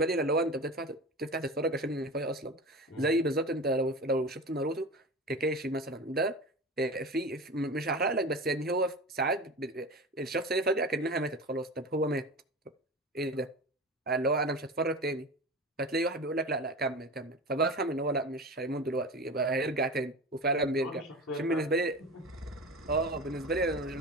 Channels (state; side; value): normal; both; correlation 0.30